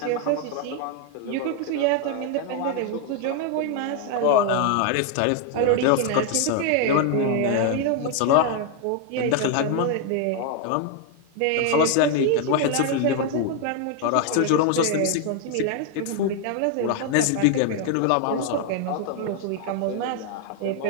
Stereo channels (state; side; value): different; both; correlation 0.01